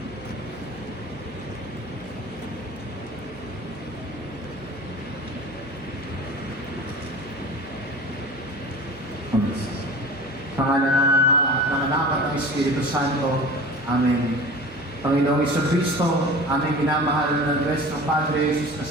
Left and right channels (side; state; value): both; normal; correlation 0.38